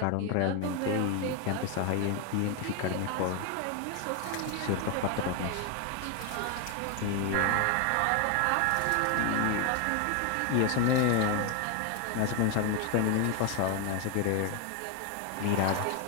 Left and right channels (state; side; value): different; both; correlation 0.01